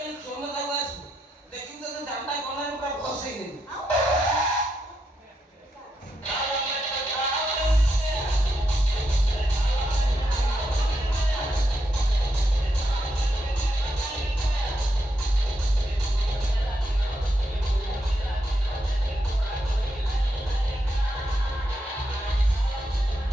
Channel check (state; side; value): normal; both; correlation 0.82